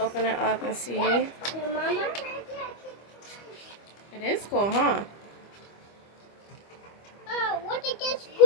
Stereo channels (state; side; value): late; right; 25 ms